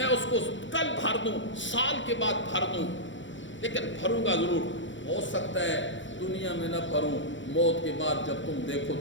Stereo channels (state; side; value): late; right; 0.55 ms